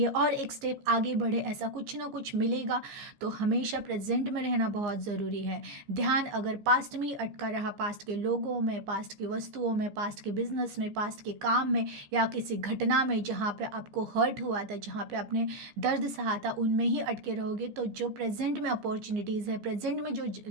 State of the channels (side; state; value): left; late; 15 ms